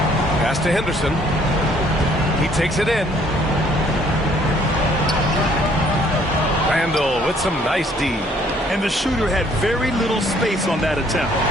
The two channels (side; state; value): both; normal; correlation 0.62